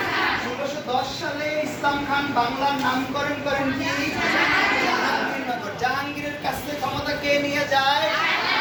1610 সালে ইসলাম খান বাংলার নামকরণ করেন কি? জাহাঙ্গীরনগর। জাহাঙ্গীরের কাছ থেকে ক্ষমতা কে নিয়ে যায়?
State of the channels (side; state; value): both; identical; correlation 1.00